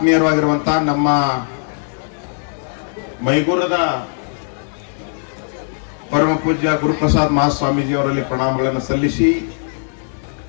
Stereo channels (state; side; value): silent; right; digital silence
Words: ನಮ್ಮ ಮೈಗೂರದ ಪರಮ ಪೂಜ್ಯ ಗುರುಪ್ರಸಾದ್ ಮಹಾಸ್ವಾಮೀಜಿ ಅವರಲ್ಲಿ ಪ್ರಣಾಮಗಳನ್ನು ಸಲ್ಲಿಸಿ,